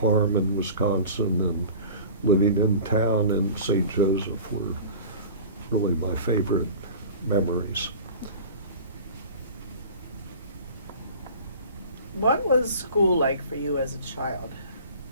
in Wisconsin and living in town in St. Joseph were really my favorite memories. What was school like for you as a child?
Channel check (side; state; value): both; inverted; correlation -0.40